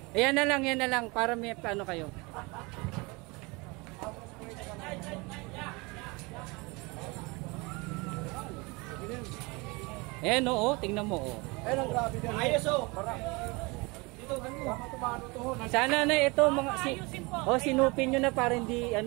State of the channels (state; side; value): quieter; left; 26.4 dB